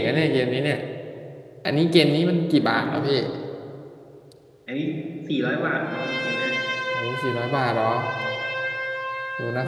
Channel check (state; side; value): identical; both; correlation 1.00